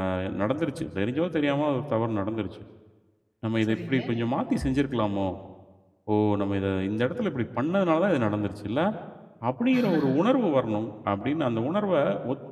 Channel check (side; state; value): both; identical; correlation 1.00